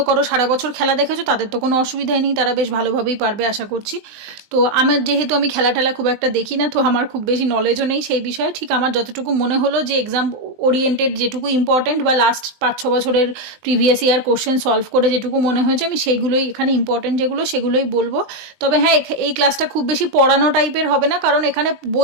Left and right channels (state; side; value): late; left; 19 ms